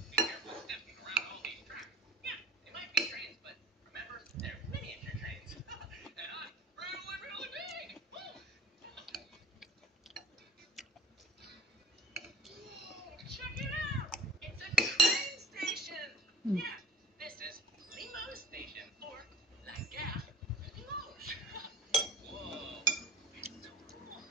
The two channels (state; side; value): normal; both; correlation 0.43